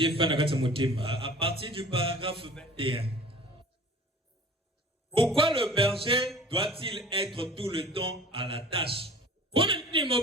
À partir du paragraphe 21. Pourquoi le berger doit-il être tout le temps à la tâche?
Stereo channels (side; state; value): both; normal; correlation 0.44